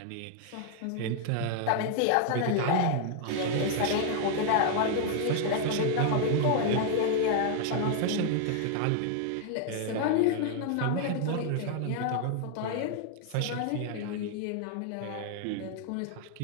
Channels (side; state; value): both; different; correlation 0.00